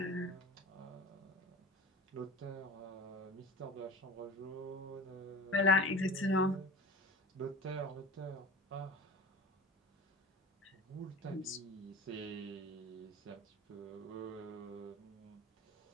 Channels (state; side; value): normal; both; correlation 0.35